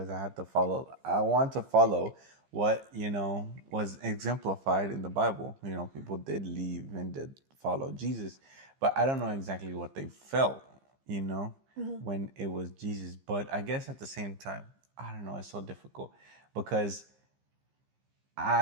I want to follow what was exemplified in the Bible. People did leave and did follow Jesus, but I don't know exactly what they felt. When it was Jesus. But I guess at the same time, I don't know. It's so difficult because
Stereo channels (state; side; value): late; left; 15 ms